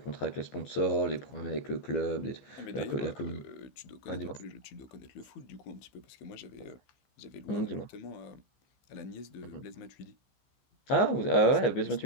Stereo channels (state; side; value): late; right; 15 ms